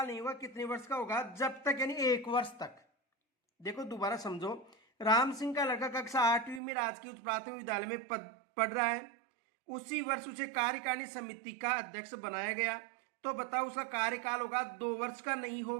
नहीं होगा, कितने वर्ष का होगा, जब तक यानी 1 वर्ष तक। देखो दोबारा समझो, राम सिंह का लड़का कक्षा 8वीं में राजकीय उच्च प्राथमिक विद्यालय में पढ़ रहा है। उसी वर्ष उसे कार्यकारिणी समिति का अध्यक्ष बनाया गया। तो बताओ उसका कार्यकाल होगा 2 वर्ष का नहीं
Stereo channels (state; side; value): drops out; left; at 6.6 s